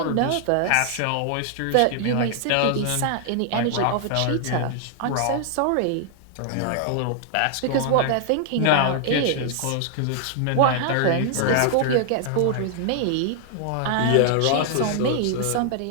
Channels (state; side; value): different; both; correlation 0.00